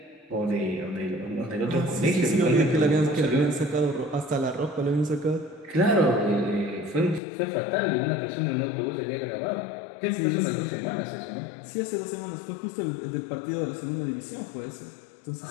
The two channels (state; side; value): drops out; right; at 7.2 s